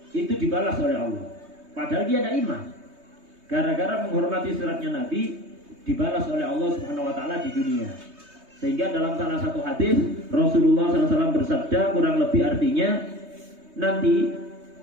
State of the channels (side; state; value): left; late; 3.2 ms